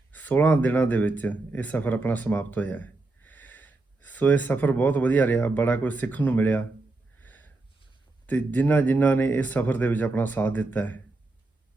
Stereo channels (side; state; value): left; quieter; 3.2 dB